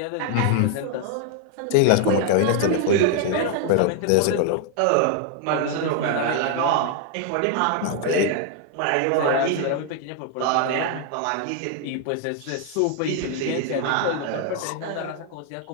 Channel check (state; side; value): different; both; correlation 0.00